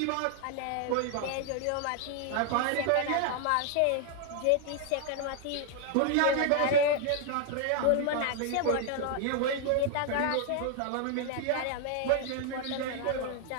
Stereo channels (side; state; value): both; different; correlation 0.00